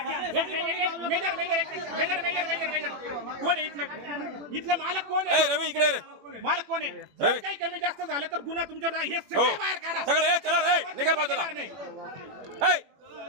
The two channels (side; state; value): left; late; 21 ms